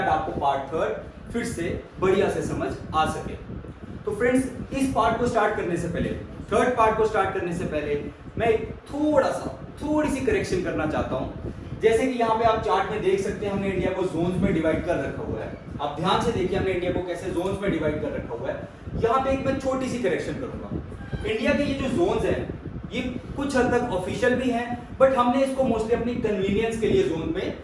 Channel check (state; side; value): identical; both; correlation 1.00